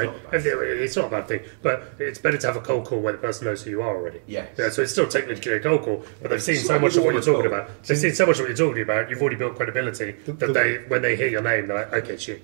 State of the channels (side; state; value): left; silent; 61 dB below the other